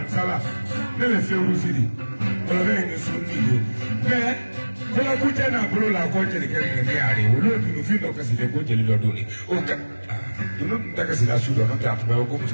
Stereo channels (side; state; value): both; inverted; correlation -1.00